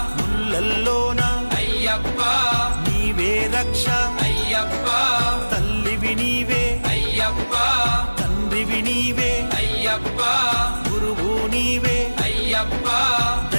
ముళ్ళల్లోన అయ్యప్ప నీవే రక్ష అయ్యప్ప తల్లివి నీవే అయ్యప్ప తండ్రివి నీవే అయ్యప్ప గురువు నీవే అయ్యప్ప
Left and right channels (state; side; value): inverted; both; correlation -1.00